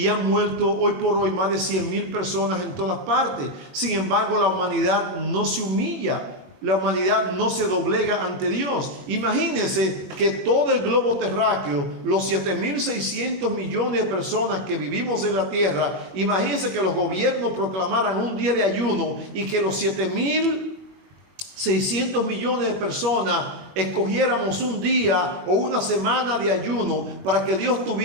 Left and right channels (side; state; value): left; late; 21 ms